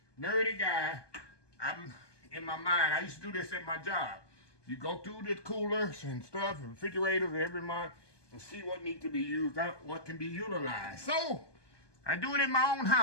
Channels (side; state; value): right; late; 1.2 ms